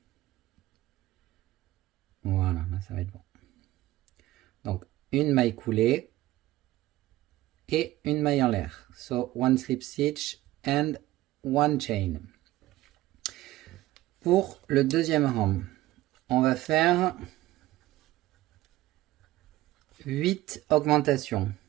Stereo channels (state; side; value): quieter; left; 16.6 dB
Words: Voilà, là ça va être bon. Donc, une maille coulée et une maille en l'air. So, one slip stitch and one chain. Pour le deuxième rang, on va faire 8 augmentations.